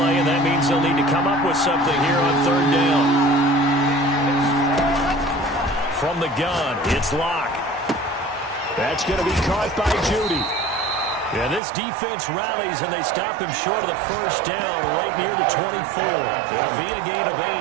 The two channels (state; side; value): drops out; left; at 11.6 s